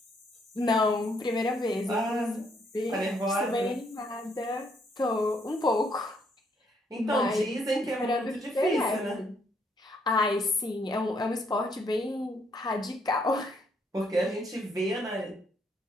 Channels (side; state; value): both; normal; correlation 0.71